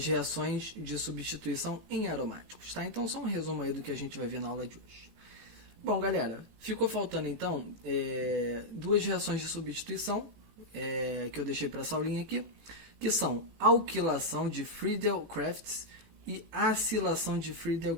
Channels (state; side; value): late; left; 18 ms